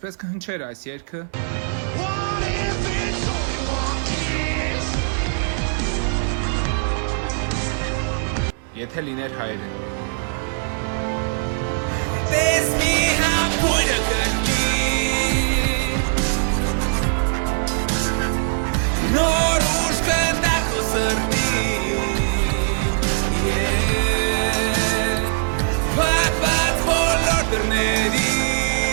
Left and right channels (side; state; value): left; silent; digital silence